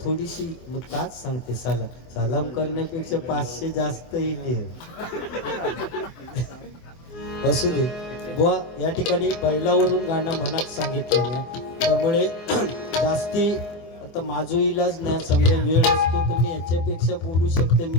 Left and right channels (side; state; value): right; late; 24 ms